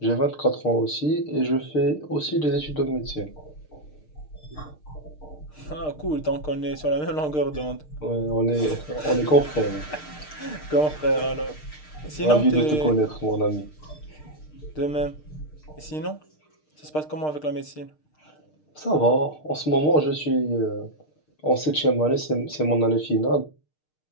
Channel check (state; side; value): late; right; 6.6 ms